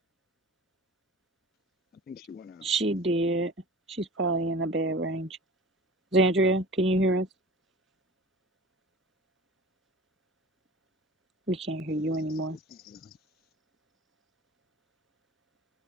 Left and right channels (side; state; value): both; normal; correlation 0.39